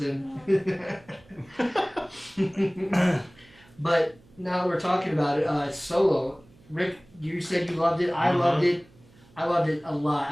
in. But now that we're talking about it, Solo. Rick, you said you loved it. I loved it. I loved it a lot.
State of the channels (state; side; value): noise; right; hum, 27 dB below the sound